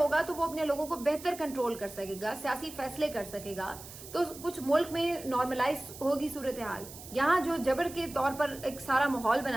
تو وہ اپنے لوگوں کو بہتر کنٹرول کر سکے گا، سیاسی فیصلے کر سکے گا. تو کچھ ملک میں نارملائز ہوگی صورتحال. یہاں جو جبر کے طور پر ایک سارا ماحول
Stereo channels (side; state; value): right; noise; hiss, 15 dB below the sound